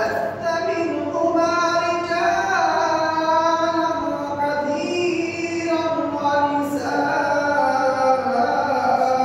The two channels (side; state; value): both; identical; correlation 1.00